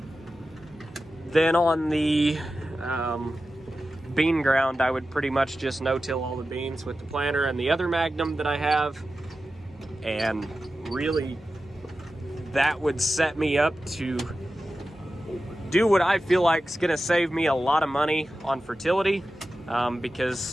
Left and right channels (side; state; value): both; normal; correlation 0.93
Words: then on the bean ground, I would pretty much just no-till all the beans with the planter and the other Magnum that I have. And really, that would set me up to do what I feel like is gonna save me a lot of money on fertility,